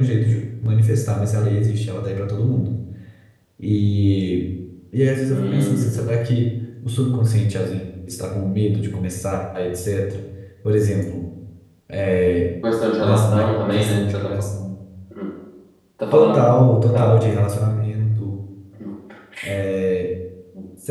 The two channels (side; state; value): both; identical; correlation 1.00